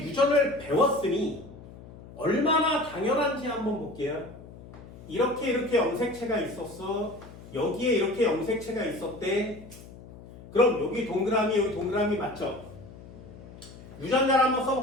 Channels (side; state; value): left; noise; hum, 18 dB below the sound